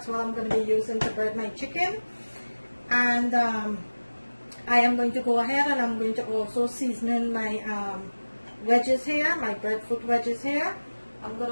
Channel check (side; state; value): both; inverted; correlation -1.00